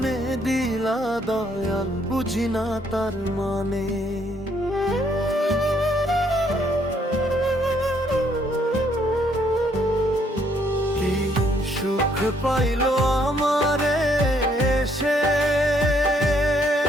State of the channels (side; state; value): both; normal; correlation 0.69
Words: দিলা দয়াল, বুঝি না তার মানে। কি সুখ পাইল আমারে সে,